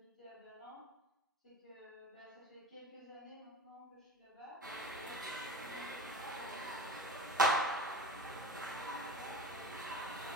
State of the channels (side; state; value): both; normal; correlation 0.35